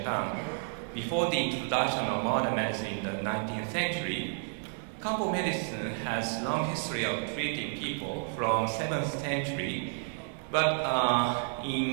Before the introduction of modern medicine in the 19th century, Kambo medicine has long history of treating people from 7th century, but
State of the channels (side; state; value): left; silent; 57 dB below the other